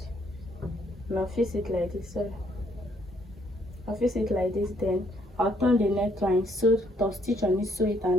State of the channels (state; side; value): normal; both; correlation 0.69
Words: and I'll fix it like this. So I'll fix it like this, then I'll turn the neckline, sew, top stitch on it, sew it,